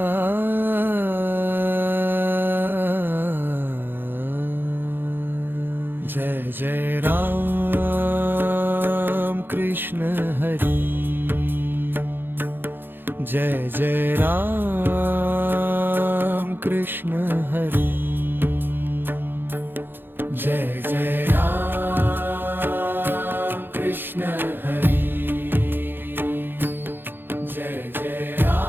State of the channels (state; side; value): late; left; 0.099 ms